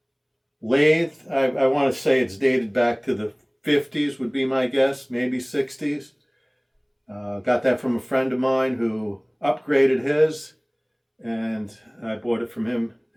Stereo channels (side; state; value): both; identical; correlation 1.00